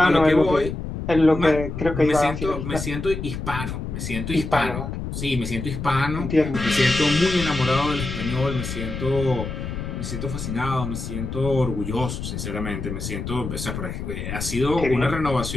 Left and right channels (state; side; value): noise; left; rumble, 6 dB below the sound